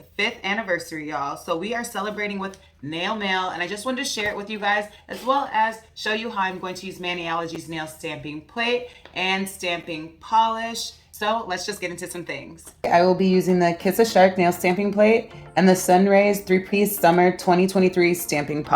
5th anniversary, y'all. So we are celebrating with nail mail, and I just wanted to share it with you guys, as well as show you how I'm going to use Maniology's nail stamping plate and stamping polish. So let's just get into some things. I will be using the Kiss a Shark nail stamping plate and the Sunrays 3-piece summer 2023 stamping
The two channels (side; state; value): both; identical; correlation 1.00